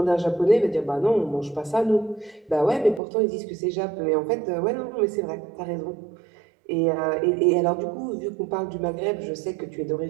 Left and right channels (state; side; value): drops out; left; at 3.0 s